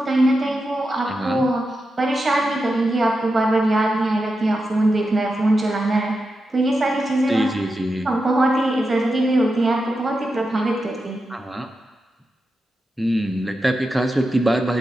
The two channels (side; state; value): both; normal; correlation 0.89